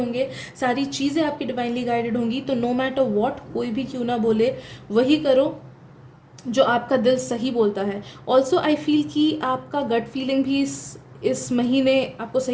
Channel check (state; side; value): identical; both; correlation 1.00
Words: सारी चीज़ें आपकी डिवाइनली गाइडेड होंगी। तो नो मैटर व्हाट कोई भी क्यों ना बोले, वही करो जो आपका दिल सही बोलता है। ऑल्सो आई फील कि आपका गट फीलिंग भी इस महीने आपको